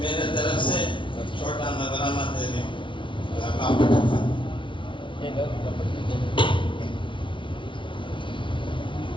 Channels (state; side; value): late; right; 0.24 ms